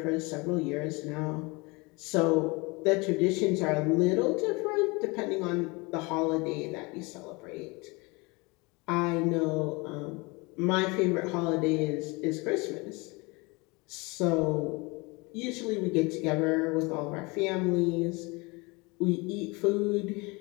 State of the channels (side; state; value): right; quieter; 26.4 dB